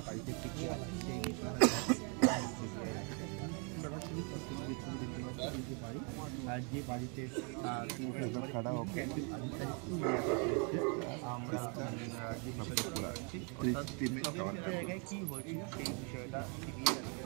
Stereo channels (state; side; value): quieter; left; 36.5 dB